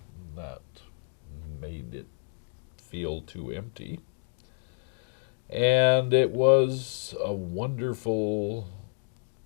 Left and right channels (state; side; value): silent; right; 58 dB below the other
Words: that made it feel too empty. And it was a wonderful,